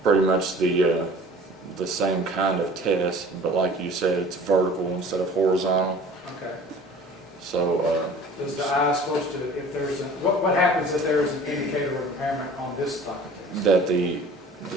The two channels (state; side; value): normal; both; correlation 0.46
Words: pretty much the same kind of test, but like you said, it's vertical instead of horizontal. Okay. So Does the eye supposed to, if there's a, what happens if there is an indicator of impairment on this type of test? that the